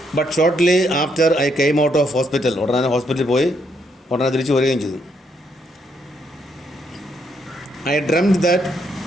But shortly after I came out of hospital, ഉടനെ ഹോസ്പിറ്റലിൽ പോയി ഉടനെ തിരിച്ചു വരികയും ചെയ്തു. I dreamt that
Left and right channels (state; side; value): normal; both; correlation 0.75